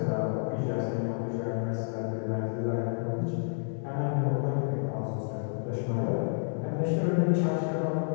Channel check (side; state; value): right; silent; digital silence